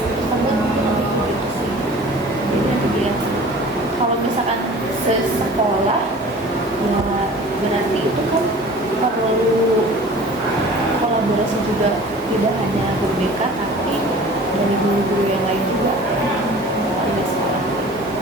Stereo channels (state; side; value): normal; both; correlation 0.44